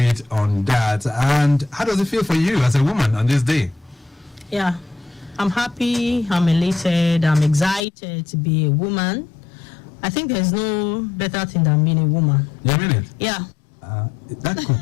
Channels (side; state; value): right; drops out; at 7.8 s